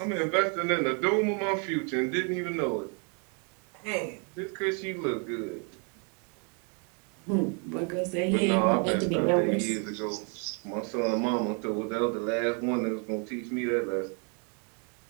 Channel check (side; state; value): left; quieter; 38.3 dB